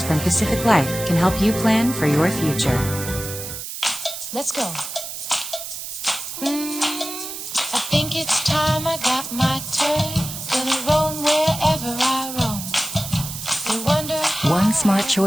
from Pacific Life can help you plan for your future." Let's go. I think it's time I got my turn. Gonna roam wherever I roam. They wonder how one smart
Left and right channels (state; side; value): noise; right; hiss, 8 dB below the sound